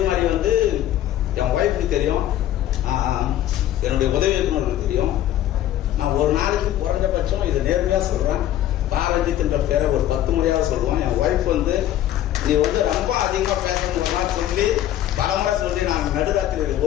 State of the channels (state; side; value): quieter; right; 12.5 dB